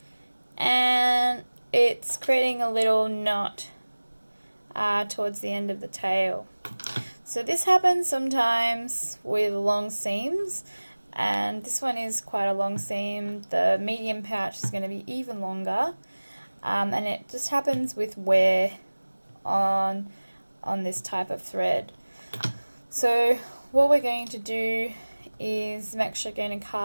and it's creating a little knot towards the end of the tail. So this happens sometimes with long seams, and this one is quite a long seam. The medium pouch is going to be even longer, and it just happens with wear on this type of thread. So what we're going to do is I'm actually going to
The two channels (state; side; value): inverted; both; correlation -1.00